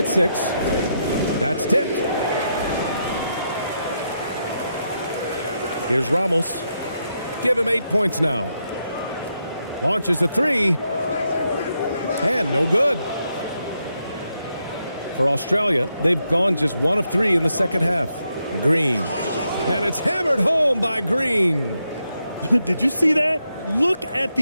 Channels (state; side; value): inverted; both; correlation -0.82